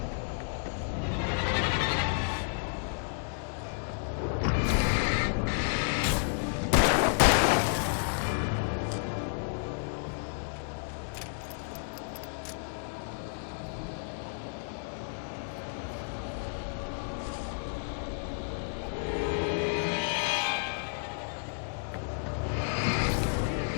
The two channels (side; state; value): right; silent; 56 dB below the other